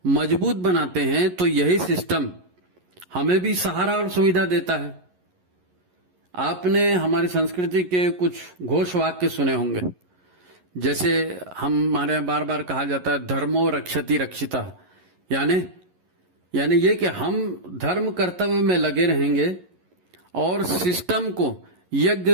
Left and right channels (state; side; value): late; left; 11 ms